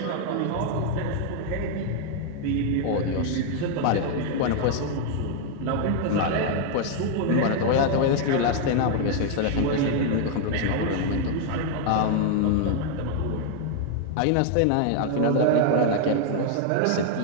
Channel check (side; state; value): both; different; correlation 0.00